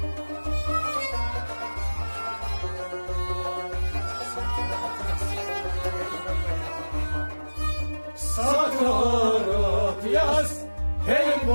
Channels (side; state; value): both; inverted; correlation -1.00